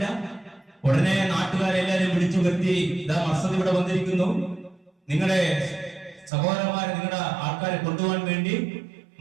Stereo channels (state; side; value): drops out; left; at 6.3 s